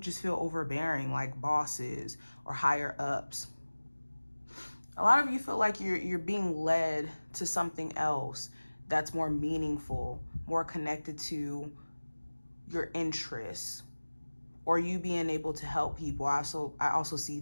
feel overbearing, like bosses or higher ups. A lot of you feel like you're being led to something else that's more meaningful, more connected to your interests, or you being able to help people. I also see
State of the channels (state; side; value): inverted; both; correlation -1.00